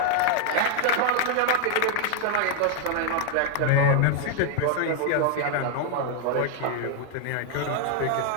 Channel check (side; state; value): both; different; correlation 0.00